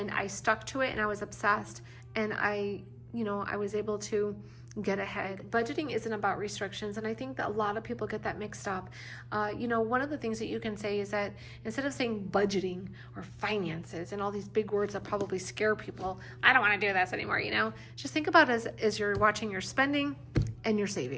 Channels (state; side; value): identical; both; correlation 1.00